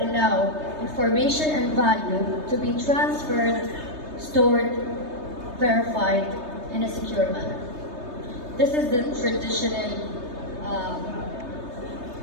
allow information and value to be transferred, stored, verified in a secure manner. This is the traditional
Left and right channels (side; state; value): left; late; 3.3 ms